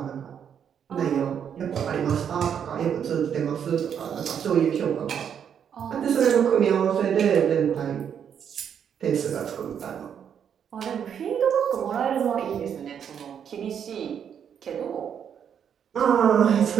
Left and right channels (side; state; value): left; quieter; 8.2 dB